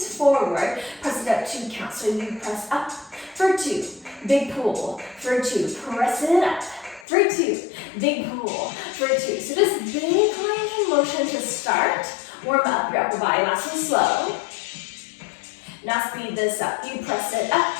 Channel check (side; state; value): right; drops out; at 7.1 s